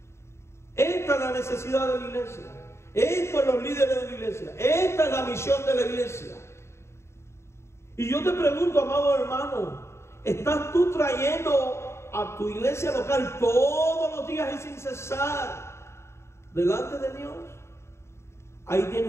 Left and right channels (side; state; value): right; late; 0.13 ms